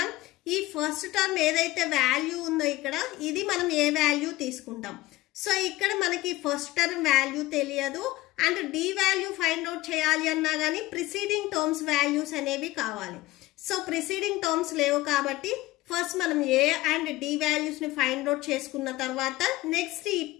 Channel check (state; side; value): quieter; right; 18.4 dB